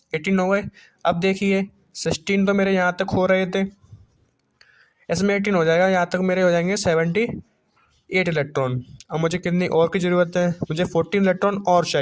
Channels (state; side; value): identical; both; correlation 1.00